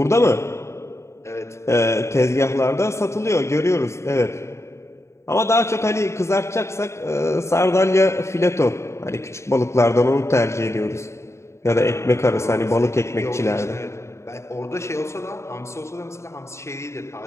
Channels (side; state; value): right; late; 0.14 ms